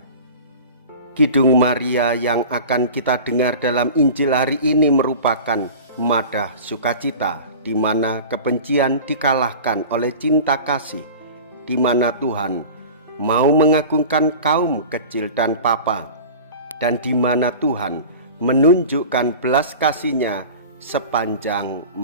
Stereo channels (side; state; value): both; inverted; correlation -0.37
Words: Kidung Maria yang akan kita dengar dalam Injil hari ini merupakan madah sukacita, di mana kebencian dikalahkan oleh cinta kasih, di mana Tuhan mau mengagungkan kaum kecil dan papa, dan di mana Tuhan menunjukkan belas kasih-Nya sepanjang